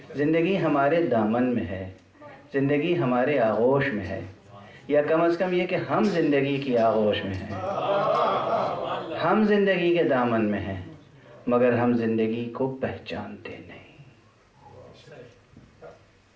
زندگی ہمارے دامن میں ہے، زندگی ہمارے آغوش میں ہے، یا کم از کم یہ کہ ہم زندگی کی آغوش میں ہیں، ہم زندگی کے دامن میں ہیں، مگر ہم زندگی کو پہچانتے نہیں.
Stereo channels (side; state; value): both; identical; correlation 1.00